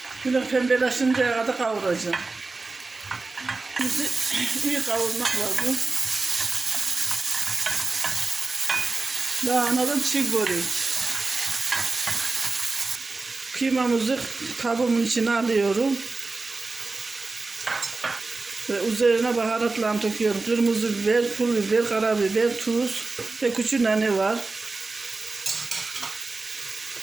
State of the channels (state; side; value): quieter; left; 3.7 dB